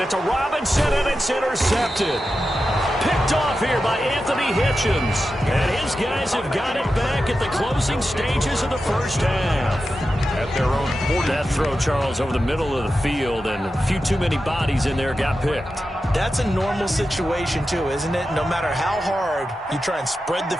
it to Robinson, and it's intercepted. Picked off here by Anthony Hitchens. And his guys have got it back at the closing stages of the first half. At their own 40. That throw, Charles, over the middle of the field, and a few too many bodies in there got picked. That's a normal situation, too, isn't it? No matter how hard you try and spread the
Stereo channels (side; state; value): both; normal; correlation 0.91